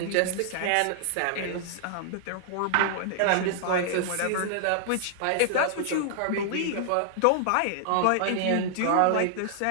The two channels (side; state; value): both; different; correlation -0.01